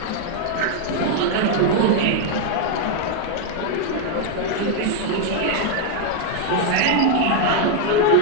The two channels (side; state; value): both; different; correlation 0.00